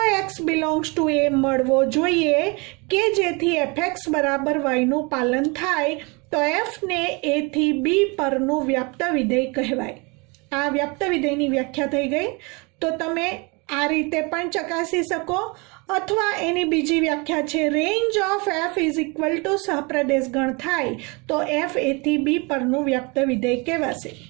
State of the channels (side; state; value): left; quieter; 29.1 dB